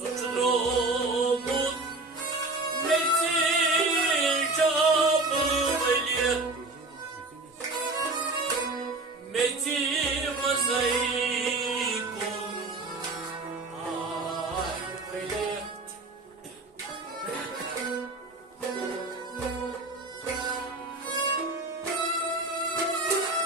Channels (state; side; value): quieter; left; 3.2 dB